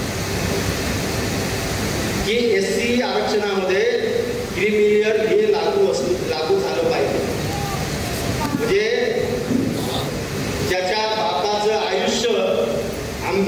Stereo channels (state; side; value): identical; both; correlation 1.00